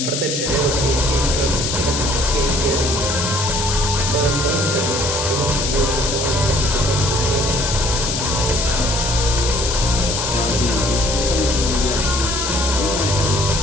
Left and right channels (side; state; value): left; noise; hiss, 2 dB below the sound